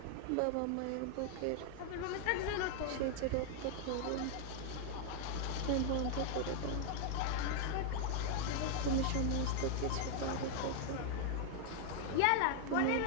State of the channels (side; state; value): both; different; correlation 0.00